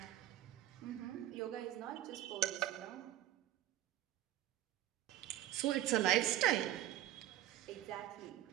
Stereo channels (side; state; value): left; quieter; 13.3 dB